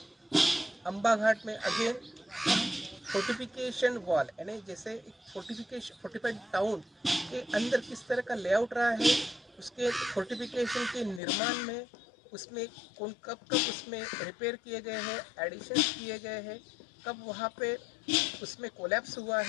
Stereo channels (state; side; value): drops out; right; at 11.2 s